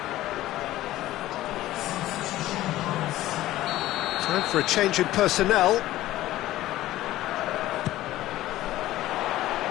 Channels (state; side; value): quieter; right; 15.4 dB